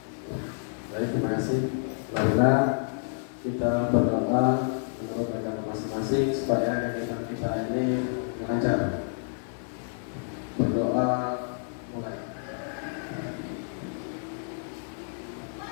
Baik, terima kasih. Marilah kita berdoa menurut agama masing-masing supaya kegiatan kita ini lancar. Berdoa mulai.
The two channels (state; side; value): silent; right; digital silence